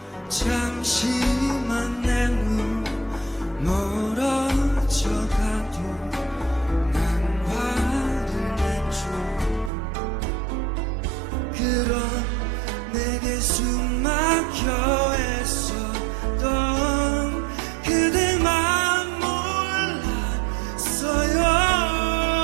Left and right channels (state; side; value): drops out; left; at 9.7 s